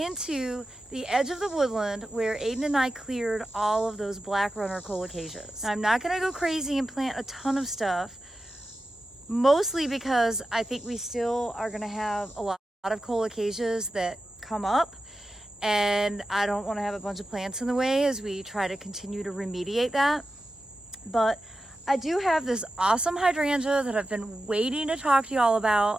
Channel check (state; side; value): normal; both; correlation 0.92